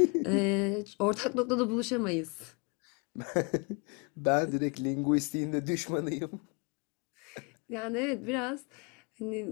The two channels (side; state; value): right; quieter; 32.6 dB